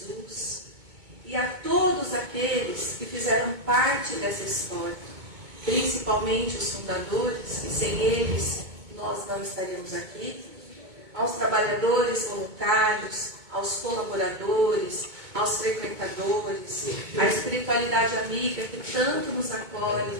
e a todos aqueles que fizeram parte dessa história, principalmente os fundadores, que sem eles nós não estaríamos aqui, aos trabalhadores voluntários, aos colaboradores, aos frequentadores, à espiritualidade amiga que tanto nos acolhe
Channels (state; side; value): late; left; 2.2 ms